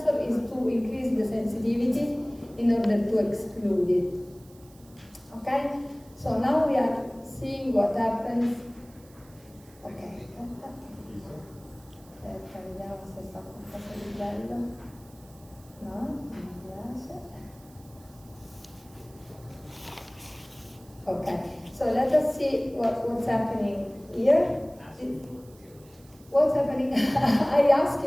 is to increase the sensitivity in order to exclude it. Okay? So now we are seeing what happens. Ok, aspetta, vediamo se fa qualcosa di bello. No, non mi piace. Okay, so let us see what's happening here. What's happening? I ask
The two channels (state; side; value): noise; right; hiss, 27 dB below the sound